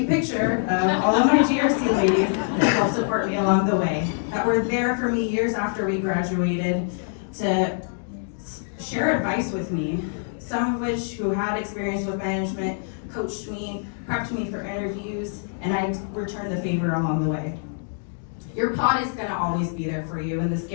picture of all of my GrC ladies that helped support me along the way, that were there for me years after we graduated to share advice with me, some of which who had experience with management, coached me, prepped me for interviews, and I returned the favor along the way. Your pod is gonna always be there for you in the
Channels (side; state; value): right; silent; digital silence